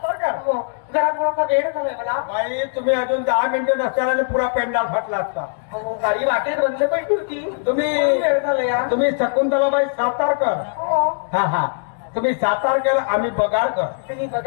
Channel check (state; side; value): silent; right; digital silence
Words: हो, जरा थोडासा वेळ झालाय मला. बाई तुम्ही अजून 10 मिनिटं नसताना पुरा पेंडाल फाटला असता. हो, गाडी वाटेत बंद पडली होती. तुम्ही वेळ झालाय. तुम्ही शकुंतलाबाई सातारकर. हो, हा तुम्ही सातारकर, आम्ही बगारकर. तुम्ही